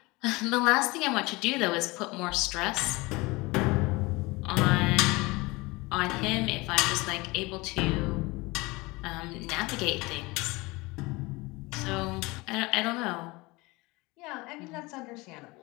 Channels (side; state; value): right; quieter; 23.5 dB